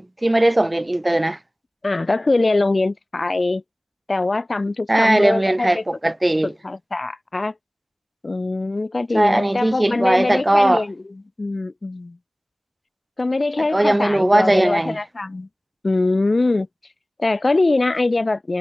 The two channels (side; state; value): both; normal; correlation 0.98